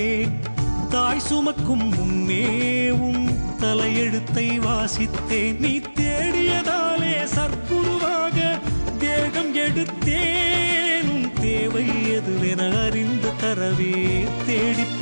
தாய் சுமக்கும் முன்னே உன் தலையெழுத்தை வாசித்தேன். நீ தேடியதாலே சற்குருவாக தேகம் எடுத்தேன், உன் தேவை எதுவென அறிந்து தரவே தேடி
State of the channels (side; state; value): both; inverted; correlation -1.00